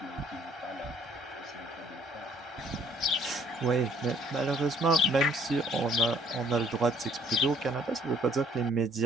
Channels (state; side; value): normal; both; correlation 0.61